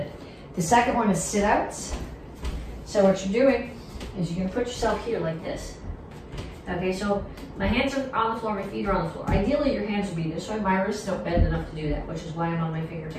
The second one is sit-outs. So what you're doing is you're gonna put yourself here like this. Okay, so my hands are on the floor, my feet are on the floor. Ideally, your hands would be this way. My wrists don't bend enough to do that, which is why I'm on my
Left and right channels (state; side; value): identical; both; correlation 1.00